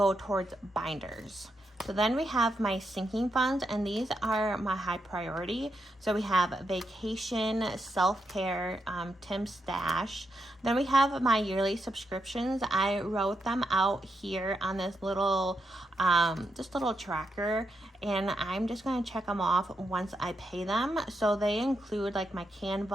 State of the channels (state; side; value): normal; both; correlation 0.83